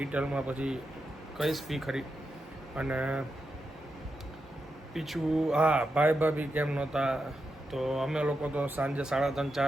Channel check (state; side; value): normal; both; correlation 0.87